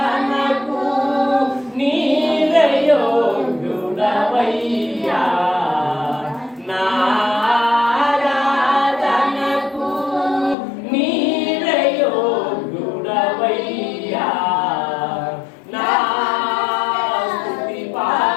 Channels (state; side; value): drops out; right; at 10.6 s